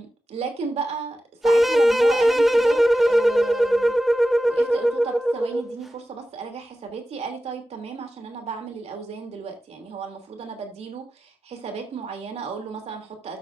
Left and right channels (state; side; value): normal; both; correlation 0.92